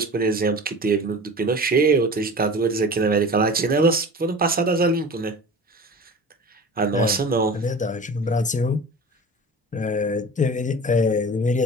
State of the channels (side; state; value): both; normal; correlation 0.36